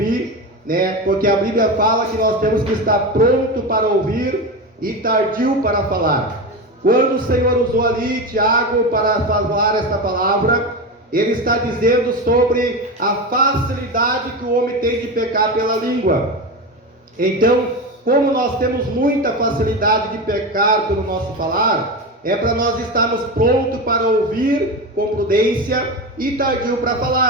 né? Porque a Bíblia fala que nós temos que estar pronto para ouvir e tardio para falar. Quando o Senhor usou ali Tiago para falar esta palavra, ele está dizendo sobre a facilidade que o homem tem de pecar pela língua. Então, como nós temos muita facilidade de pecar pelo nosso falar, é para nós estarmos prontos para ouvir com prudência e tardio para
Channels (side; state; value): both; normal; correlation 0.21